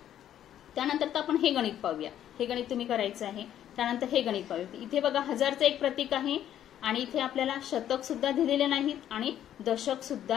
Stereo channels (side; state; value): right; quieter; 10.9 dB